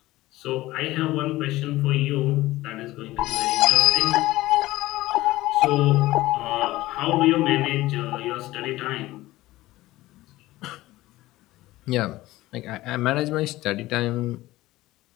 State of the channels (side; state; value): right; quieter; 17.5 dB